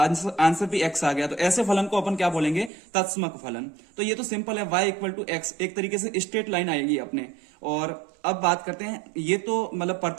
भी एक्स आ गया, तो ऐसे फलन को अपन क्या बोलेंगे, तत्समक फलन। तो ये तो सिंपल है, y इक्वल टू एक्स एक तरीके से स्ट्रेट लाइन आएगी अपने। और अब बात करते हैं, ये तो मतलब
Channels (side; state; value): left; drops out; at 2.7 s